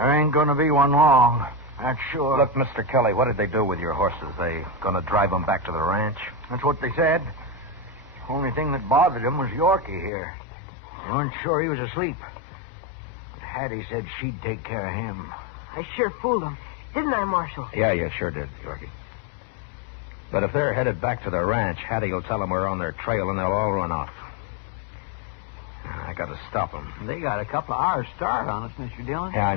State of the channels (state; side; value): drops out; right; at 10.1 s